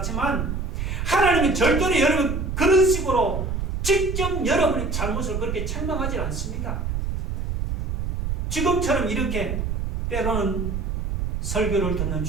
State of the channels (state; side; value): noise; right; rumble, 2 dB below the sound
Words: 하나님은 절대로 여러분 그런 식으로 직접 여러분의 잘못을 그렇게 책망하지 않습니다. 지금처럼 이렇게 때로는 설교를 듣는